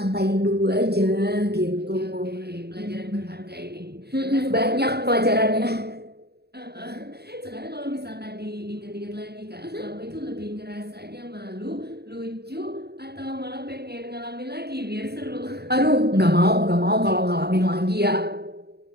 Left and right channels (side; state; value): left; late; 0.47 ms